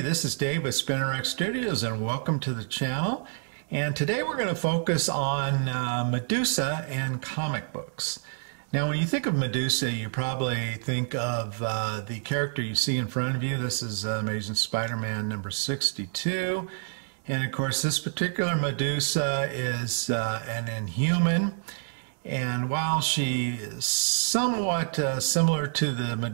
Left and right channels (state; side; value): silent; left; digital silence